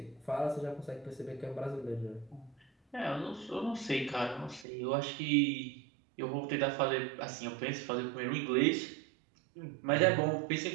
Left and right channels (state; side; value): drops out; left; at 4.7 s